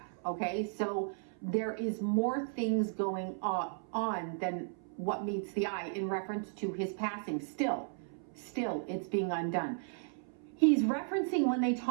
okay? So there is more things going on than what meets the eye in reference to his passing. Still, it's being undone. He's referencing when they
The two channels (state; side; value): silent; left; 54 dB below the other